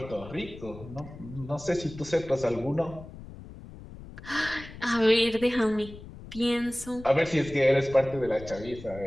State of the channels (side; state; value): left; noise; rumble, 15 dB below the sound